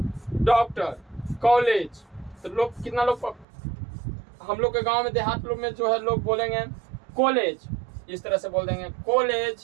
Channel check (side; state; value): left; drops out; at 3.5 s